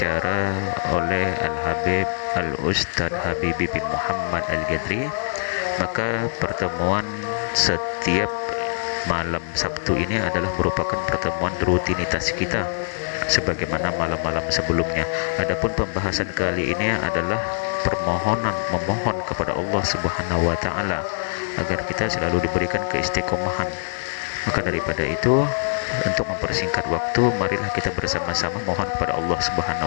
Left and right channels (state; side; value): silent; right; digital silence